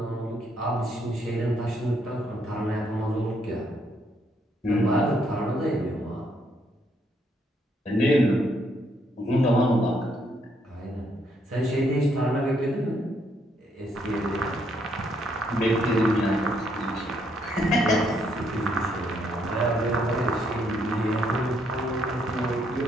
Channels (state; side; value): normal; both; correlation 0.72